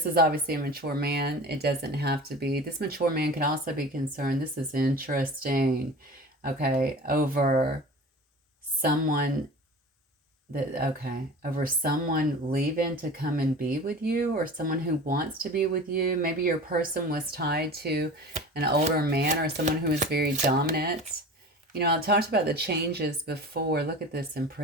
is obviously a mature man. It doesn't have to be. This mature man can also be concerned. This is interesting. Okay, over someone Okay, over someone leaving to come and be with you, or someone who wants to be with you. Maybe your person was tied to an older man or someone who is very dominant. You know, I talked about the changes before. Look at this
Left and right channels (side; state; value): both; normal; correlation 0.36